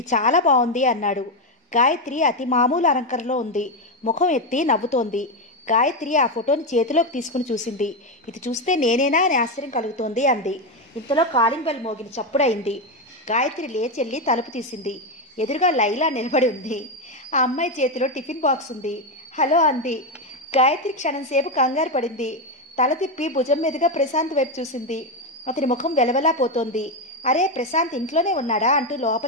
చాలా బాగుంది అన్నాడు. గాయత్రి అతి మామూలు అలంకరణలో ఉంది. ముఖం ఎత్తి నవ్వుతోంది. గాయత్రి ఆ ఫోటోని చేతిలోకి తీసుకుని చూసింది. ఇది చూస్తే నేనేనా అని ఆశ్చర్యం కలుగుతోంది అంది. ఇంతలో కాలింగ్ బెల్ మోగిన చప్పుడైంది. గాయత్రి లేచెల్లి తలుపు తీసింది. ఎదురుగా లైలా నిలబడి ఉంది. ఆ అమ్మాయి చేతిలో టిఫిన్ బాక్స్ ఉంది. హలో అంది. గాయత్రి క్షణంసేపు కంగారు పడింది. తల తిప్పి భుజం మీదుగా ప్రశాంత్ వైపు చూసింది. అతని ముఖం వెలవెలా పోతోంది. అరే, ప్రశాంత్ ఇంట్లోనే ఉన్నాడా అంటూ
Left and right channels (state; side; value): normal; both; correlation 0.09